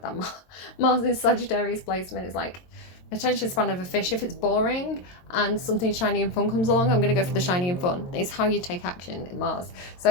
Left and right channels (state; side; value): late; right; 22 ms